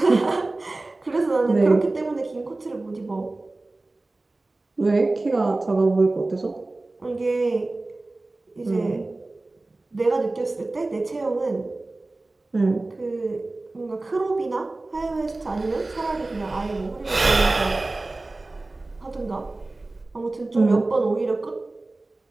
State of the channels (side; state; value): left; quieter; 3.1 dB